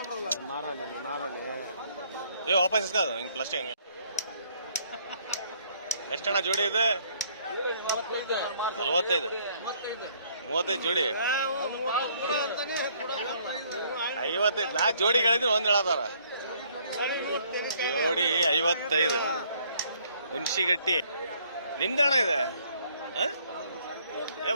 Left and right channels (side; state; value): both; inverted; correlation -0.64